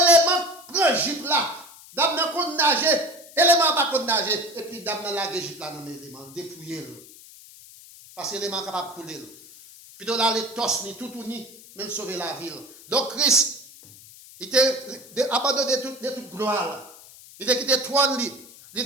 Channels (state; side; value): noise; left; hiss, 20 dB below the sound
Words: prend un jeep là. Dame n'a pas nager, élément pas de nager. Et puis, dame n'a la jeep là dans l'élément, dépouiller le. Parce que l'élément est capable de couler. Puis, dans là, les tosses, ni tout ni, même sauver la ville. Donc, Christ, il était abandonné de toute gloire là. Il était quitté trône, il